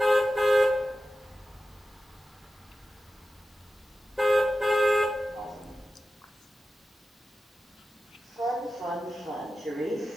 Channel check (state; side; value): normal; both; correlation 0.93